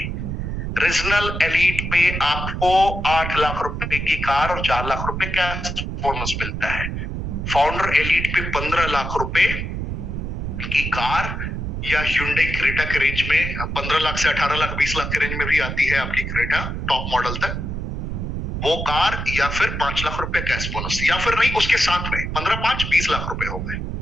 रीजनल एलीट पे आपको 8 लाख रुपए की कार और 4 लाख रुपए कैश बोनस मिलता है। फाउंडर एलीट पे 15 लाख रुपए की कार या Hyundai क्रेटा के रेंज में 15 लाख से 18 लाख 20 लाख के रेंज में भी आती है आपकी क्रेटा टॉप मॉडल तक, वो कार, या फिर 5 लाख रुपए कैश बोनस, या फिर नहीं उसके साथ में 15-5 20 लाख रुपए हो गए।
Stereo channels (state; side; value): noise; right; rumble, 4 dB below the sound